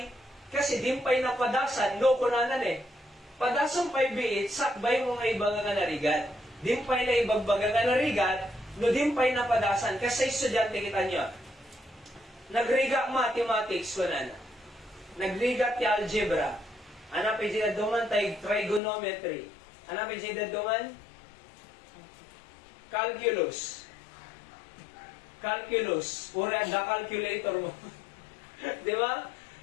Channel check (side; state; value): right; drops out; at 18.8 s